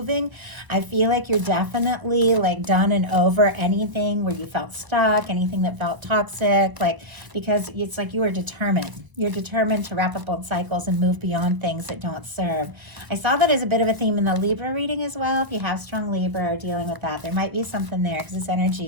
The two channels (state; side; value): late; left; 1.0 ms